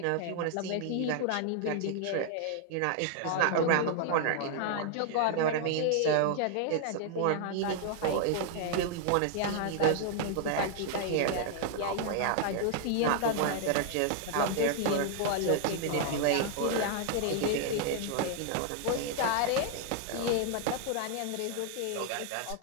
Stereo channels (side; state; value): both; different; correlation 0.00